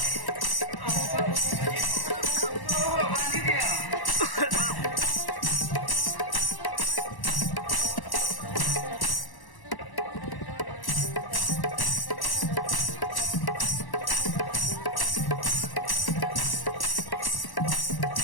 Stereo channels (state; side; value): late; right; 1.1 ms